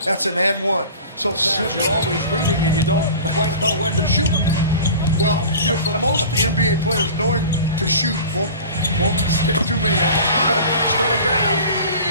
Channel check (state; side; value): inverted; both; correlation -0.39